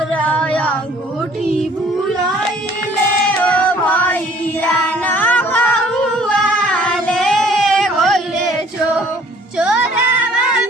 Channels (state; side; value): normal; both; correlation 0.57